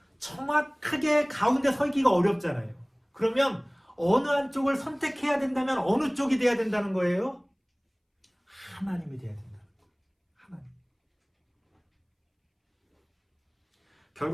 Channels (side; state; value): both; identical; correlation 1.00